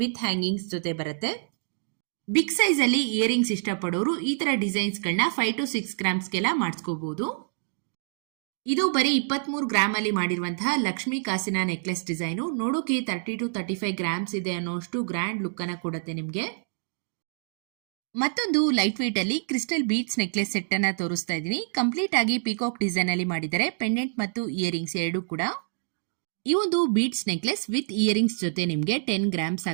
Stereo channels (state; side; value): silent; left; digital silence